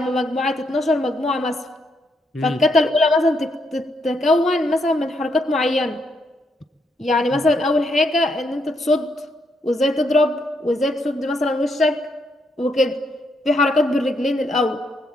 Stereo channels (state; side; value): normal; both; correlation 0.77